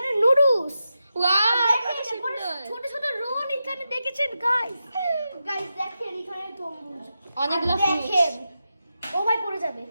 নুডলস। ছোট ছোট রোল এখানে দেখেছেন গাইস দেখেন এখানে তরমুজ অনেকগুলো দেখেন। ও ভাই পড়ে যাবে।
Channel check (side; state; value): both; inverted; correlation -0.89